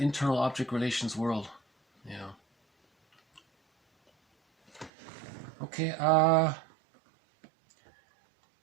object relations world. Okay,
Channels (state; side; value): drops out; left; at 4.9 s